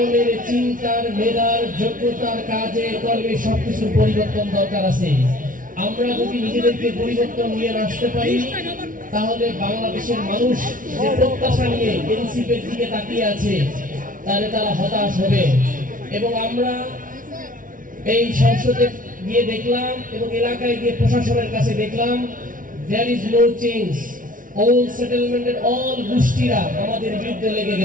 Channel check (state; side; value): late; left; 0.39 ms